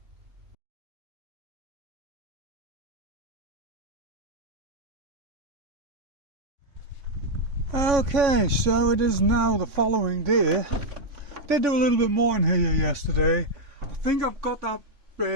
Okay, so it is now the following day. Did do a little bit more in here yesterday. I think I've got that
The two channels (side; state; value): left; late; 3.6 ms